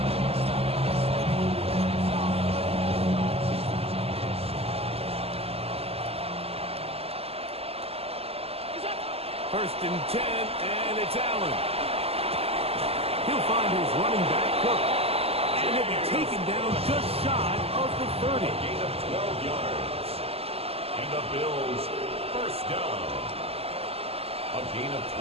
First and 10, and it's Allen. He'll find his running back, Cook. And he'll be taken down just shy of the 30. Gain of 12 yards. And the Bills first down. A gain of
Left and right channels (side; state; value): left; late; 0.29 ms